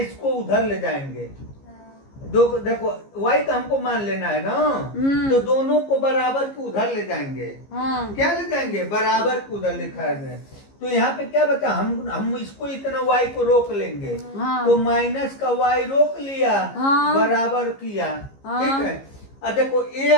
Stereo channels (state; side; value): late; right; 15 ms